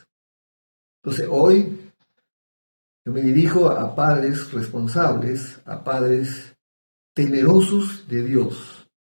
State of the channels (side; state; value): both; inverted; correlation -1.00